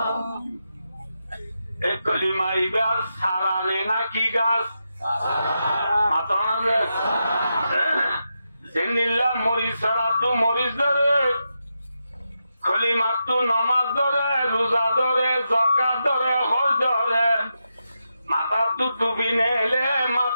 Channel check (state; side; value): inverted; both; correlation -0.87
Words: এ কলিমা ইবার সারানে নাকি গাছ জেনিল্লা মরিচ ছাড়া তু মরিচ ধরে কলিমার তু নমাজ ধরে রোজা ধরে জকাত ধরে হজ ধরে মাথার তু টুপি নেলে